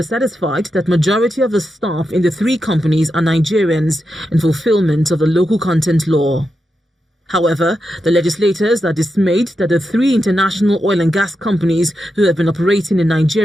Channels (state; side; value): normal; both; correlation 0.87